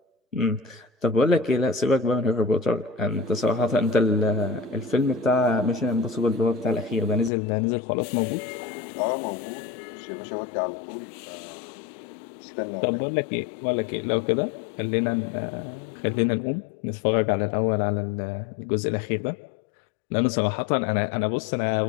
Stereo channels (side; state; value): right; drops out; at 7.3 s